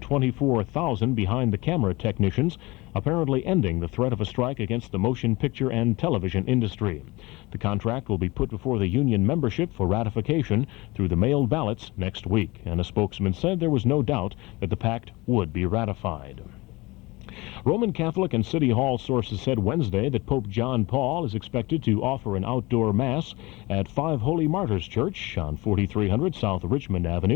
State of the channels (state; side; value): quieter; right; 22.7 dB